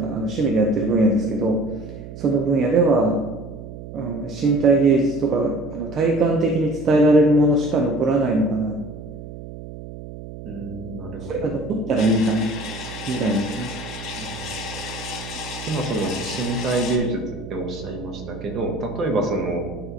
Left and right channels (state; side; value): noise; right; hum, 12 dB below the sound